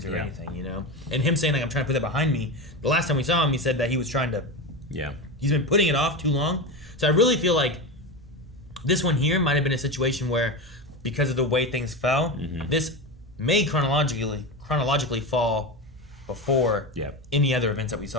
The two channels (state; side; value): normal; both; correlation 0.20